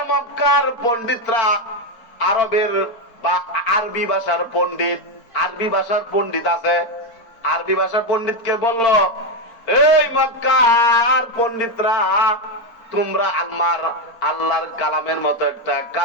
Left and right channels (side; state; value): right; late; 4.4 ms